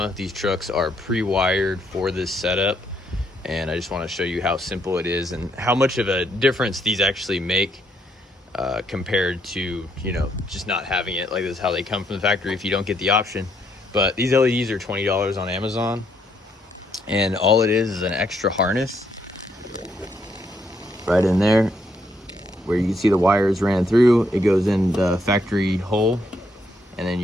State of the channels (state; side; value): normal; both; correlation 0.73